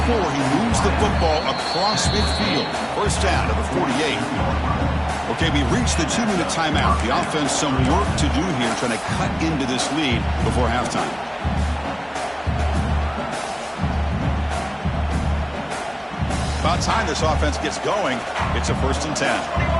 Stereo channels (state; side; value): identical; both; correlation 1.00